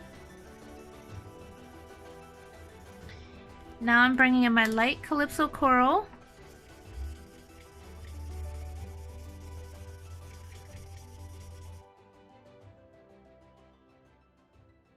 Now I'm bringing in my light Calypso Coral.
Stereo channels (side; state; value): both; identical; correlation 1.00